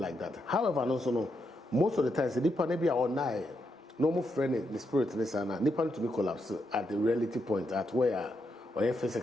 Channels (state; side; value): normal; both; correlation 0.82